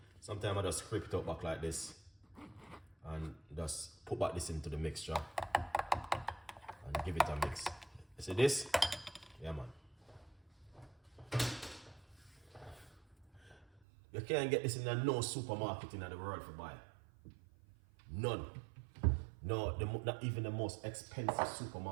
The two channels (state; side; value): drops out; left; at 13.8 s